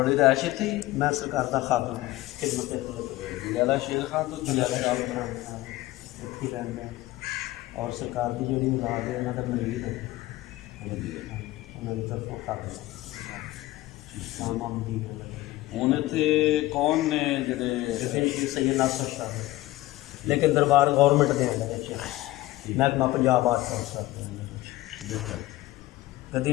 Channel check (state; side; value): quieter; right; 17.6 dB